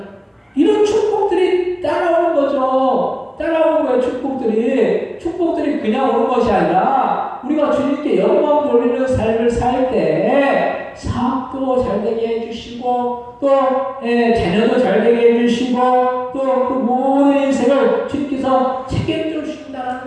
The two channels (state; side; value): identical; both; correlation 1.00